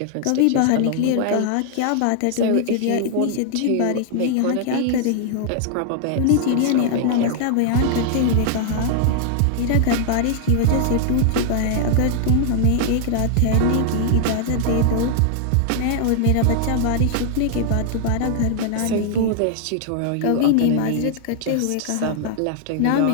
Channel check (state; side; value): different; both; correlation 0.00